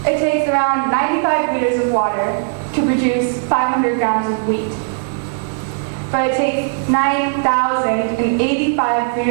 It takes around 95 liters of water to produce 500 grams of wheat. But it takes 9,085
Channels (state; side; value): silent; left; digital silence